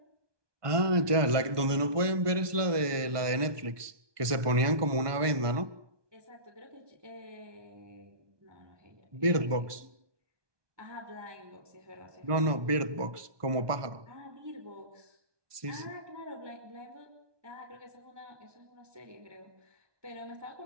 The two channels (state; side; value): late; left; 1.2 ms